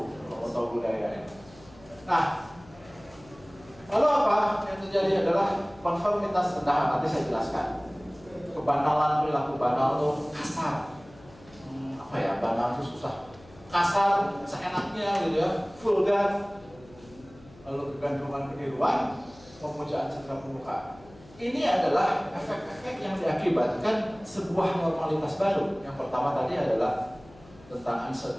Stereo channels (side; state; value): left; noise; hum, 23 dB below the sound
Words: kalau tahu budaya. Nah, lalu apa yang terjadi adalah konformitas rendahan. Nanti saya jelaskan. Kebanalan, perilaku banal tuh kasar. Apa ya, banal itu susah. Kasar, seenaknya gitu ya, vulgar. Lalu kegantungan keniruan, pemujaan citra permukaan. Ini adalah efek-efek yang diakibatkan sebuah normalitas baru. Yang pertama tadi adalah tentang